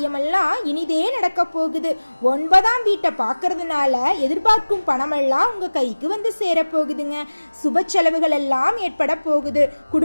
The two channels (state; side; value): inverted; both; correlation -1.00